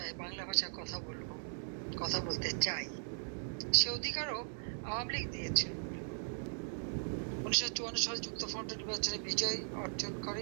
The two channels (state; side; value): silent; left; digital silence